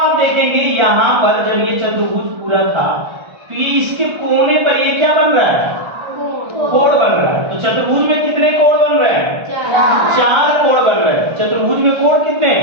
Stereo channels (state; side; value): late; left; 1.3 ms